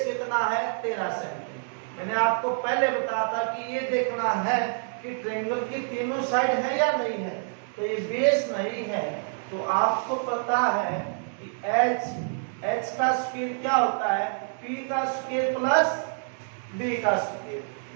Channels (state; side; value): silent; left; digital silence